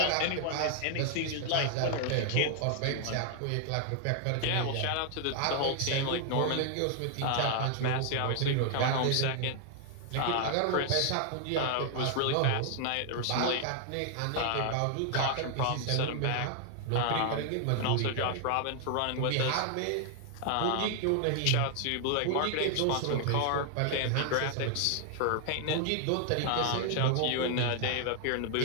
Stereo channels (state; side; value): different; both; correlation 0.00